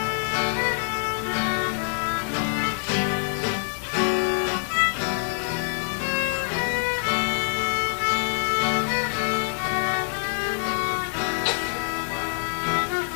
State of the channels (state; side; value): silent; right; digital silence